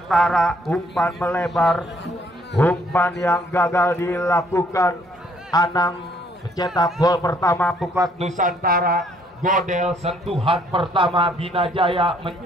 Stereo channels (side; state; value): both; normal; correlation 0.65